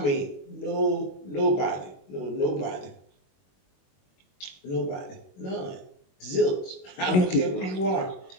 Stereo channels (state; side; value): late; right; 22 ms